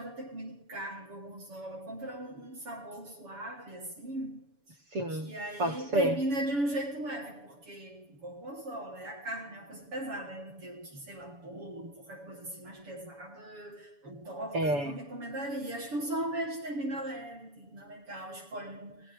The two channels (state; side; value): late; left; 7.0 ms